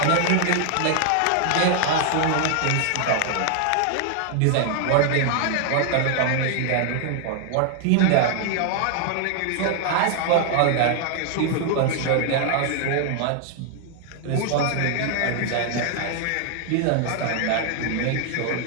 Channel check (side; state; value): both; different; correlation 0.00